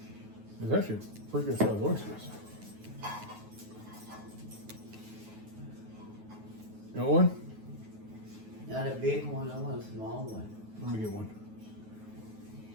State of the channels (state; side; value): late; left; 9.4 ms